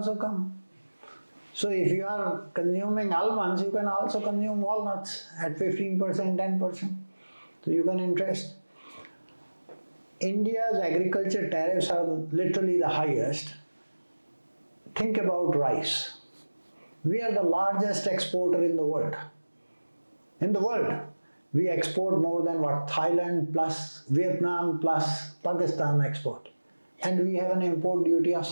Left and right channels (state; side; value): inverted; both; correlation -1.00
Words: come. So if you are consuming almonds, you can also consume walnuts at 15%, 10%. So you can interest. India's agriculture tariffs are literally the highest. Think about rice. We are the largest exporter in the world. In the world, we export more than what Thailand plus Vietnam plus Pakistan export. And we have an import duty of